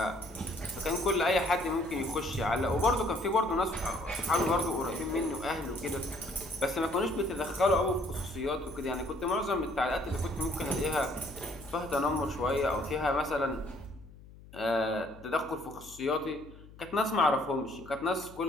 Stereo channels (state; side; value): noise; left; hum, 20 dB below the sound